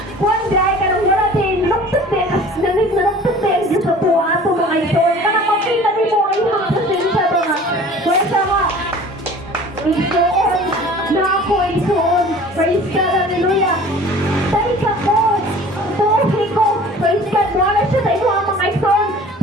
kuhan dahil ka nang wala din luktot din nanig na luktot din sa tuwa ito mga isog kanang makita din mo ay mga pasensya ba nga kwenta nga isoon na ako isoon praise God hallelujah dahil ka ko tuhi ko praise God wala siya sa imo ang mga isoon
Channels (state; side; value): normal; both; correlation 0.45